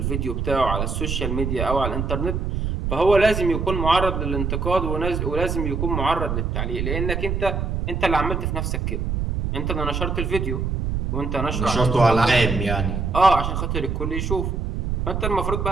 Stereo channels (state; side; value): noise; right; rumble, 1 dB below the sound